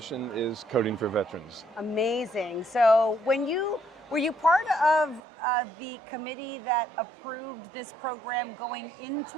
is Coding for Veterans. Amazing. So were you part of the committee that approved this program going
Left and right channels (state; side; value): drops out; left; at 5.2 s